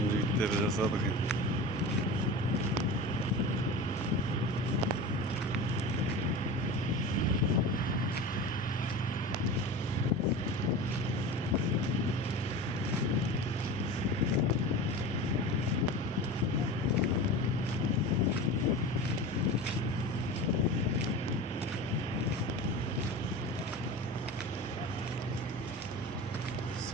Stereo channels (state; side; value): normal; both; correlation 0.32